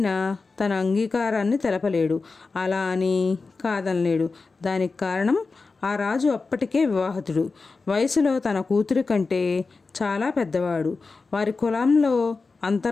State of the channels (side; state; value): right; quieter; 4.1 dB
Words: తన అంగీకారాన్ని తెలపలేడు, అలా అని కాదనలేడు. దానికి కారణం ఆ రాజు అప్పటికే వివాహితుడు, వయసులో తన కూతురి కంటే చాలా పెద్దవాడు. వారి కులంలో